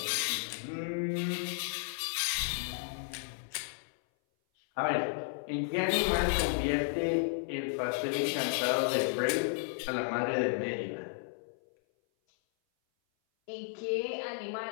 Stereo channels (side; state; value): right; silent; 56 dB below the other